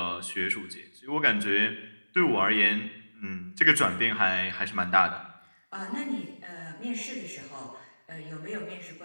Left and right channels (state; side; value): inverted; both; correlation -1.00